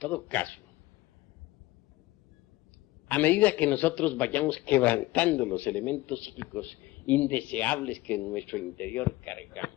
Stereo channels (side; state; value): right; quieter; 18.7 dB